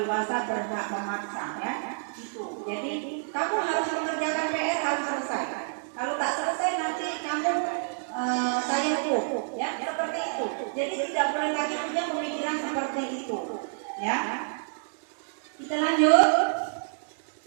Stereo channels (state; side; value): silent; left; digital silence